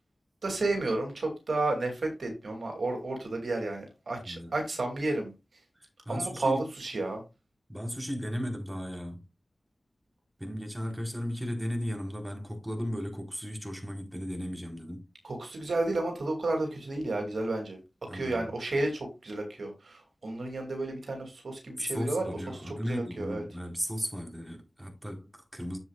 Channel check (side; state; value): both; normal; correlation 0.95